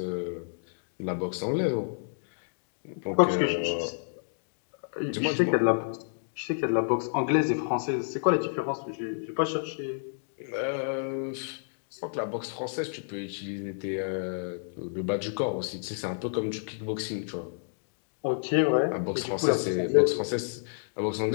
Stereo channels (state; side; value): silent; right; digital silence